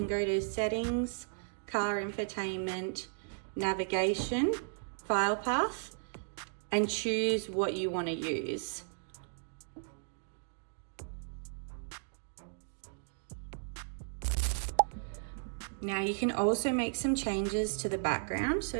go to settings, car infotainment, navigation, file path, and choose what you want to use. Now you can also make some changes to the background. So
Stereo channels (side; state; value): left; silent; digital silence